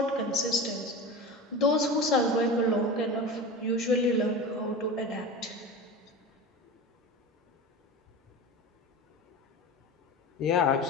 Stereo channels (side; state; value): both; normal; correlation 0.30